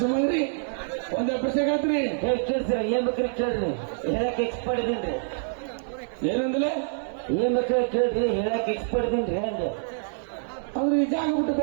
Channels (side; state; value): left; silent; digital silence